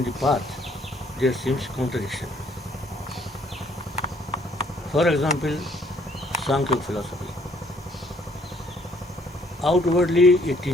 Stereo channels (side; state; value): both; normal; correlation 0.64